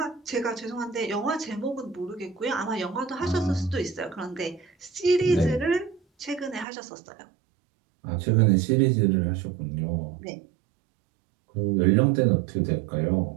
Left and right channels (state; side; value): drops out; left; at 6.7 s